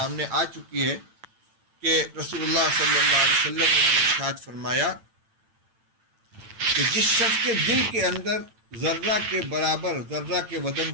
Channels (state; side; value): late; left; 8.9 ms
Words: آ چکی ہے کہ رسول اللہ صلی اللہ علیہ وسلم نے ارشاد فرمایا کہ جس شخص کے دل کے اندر ذرہ کے برابر، ذرہ کے